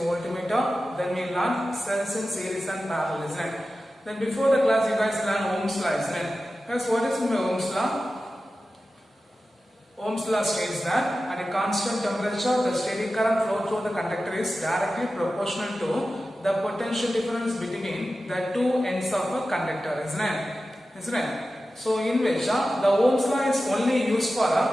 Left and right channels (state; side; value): normal; both; correlation 0.94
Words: voltmeter. Then we learn cells in series and parallel, isn't it? Then before the class, you guys learn Ohm's law, isn't it? Guys, what is Ohm's law? Ohm's law states that at a constant temperature, the steady current flow through the conductor is directly proportional to the potential difference between the two ends of a conductor, isn't it? So in which the Ohm's law is only used for